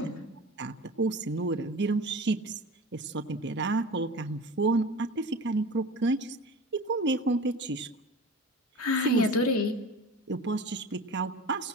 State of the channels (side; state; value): both; normal; correlation 0.36